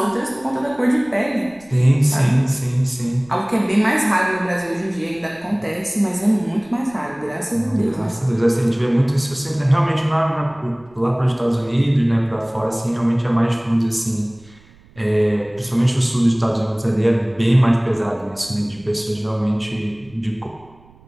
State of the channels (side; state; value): right; noise; rumble, 27 dB below the sound